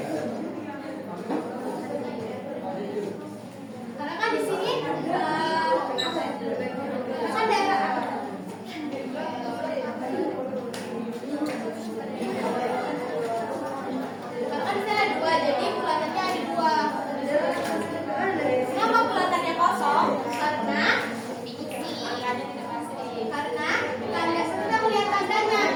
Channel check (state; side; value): identical; both; correlation 1.00